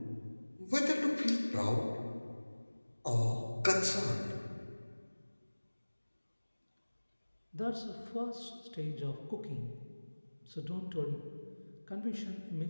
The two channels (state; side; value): inverted; both; correlation -1.00